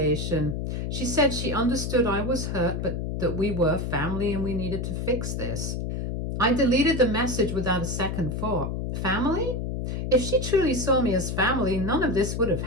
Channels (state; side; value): noise; left; hum, 3 dB below the sound